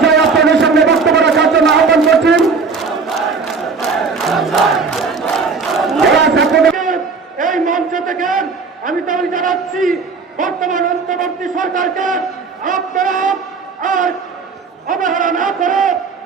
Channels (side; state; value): left; quieter; 4.8 dB